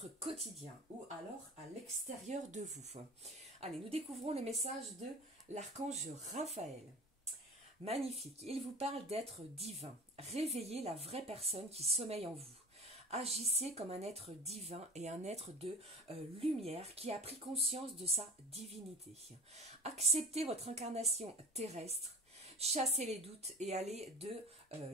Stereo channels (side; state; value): both; normal; correlation 0.39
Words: quotidien ou alors à l'extérieur de vous. Allez, nous découvrons les messages de l'archange Raphaël. Magnifique, il vous parle d'être divin. Réveillez la vraie personne qui sommeille en vous. Agissez comme un être divin et un être de lumière qui a pris conscience de sa divinité. Acceptez votre incarnation terrestre. Chassez les doutes et allez de